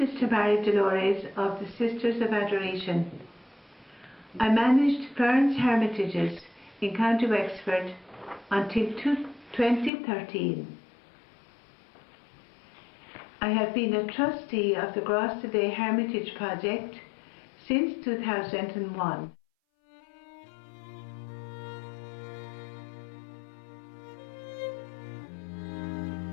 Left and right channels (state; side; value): drops out; right; at 9.9 s